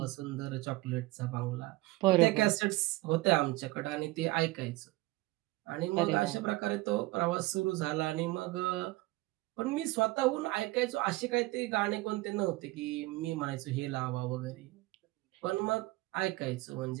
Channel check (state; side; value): quieter; left; 20.2 dB